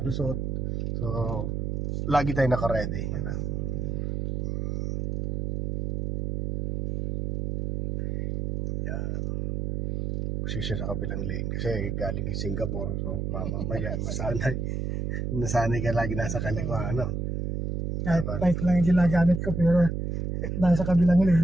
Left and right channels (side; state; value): right; noise; hum, 2 dB below the sound